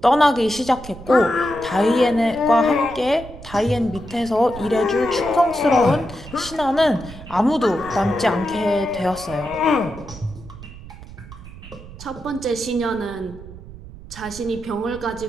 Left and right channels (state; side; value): noise; right; rumble, 16 dB below the sound